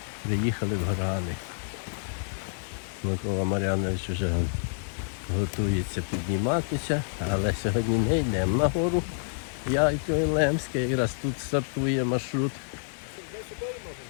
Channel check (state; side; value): silent; right; digital silence